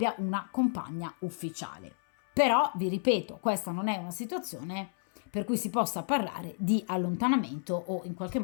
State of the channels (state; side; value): silent; right; 57 dB below the other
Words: una compagna ufficiale. Però vi ripeto, questa non è una situazione per cui si possa parlare di allontanamento o in qualche